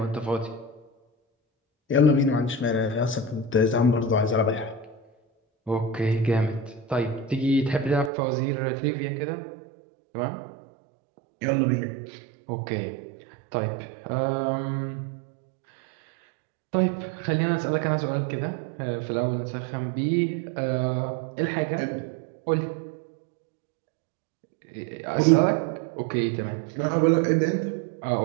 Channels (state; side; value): drops out; left; at 8.1 s